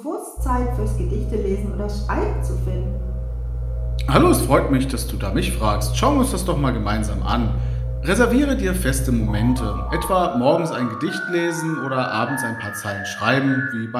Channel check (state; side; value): identical; both; correlation 1.00